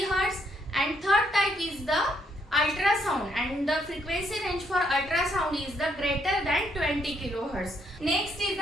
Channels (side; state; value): both; normal; correlation 0.72